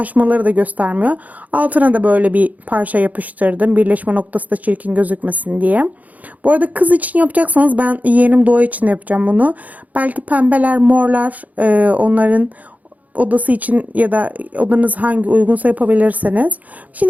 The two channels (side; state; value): left; late; 0.076 ms